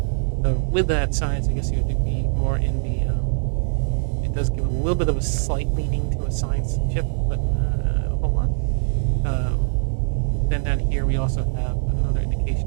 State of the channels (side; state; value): left; silent; digital silence